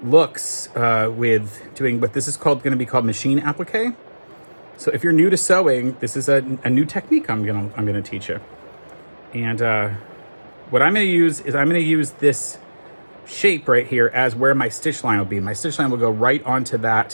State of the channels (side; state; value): both; inverted; correlation -1.00